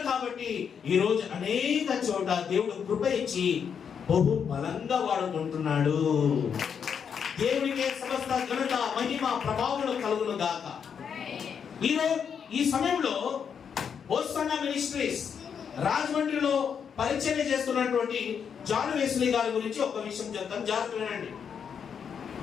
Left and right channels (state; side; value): quieter; right; 7.2 dB